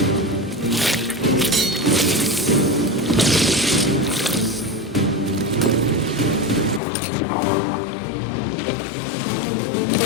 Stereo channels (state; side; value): drops out; right; at 6.8 s